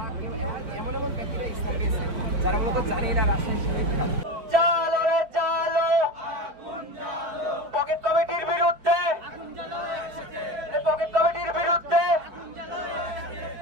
এমন এমন ব্যক্তিরা ইসলাম পেয়েছে যারা মূলত জানি না রাজশাহী শহীদ খান। চালো রে চালো, পকেট কমিটির বিরুদ্ধে, পকেট কমিটির বিরুদ্ধে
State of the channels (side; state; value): left; late; 5.1 ms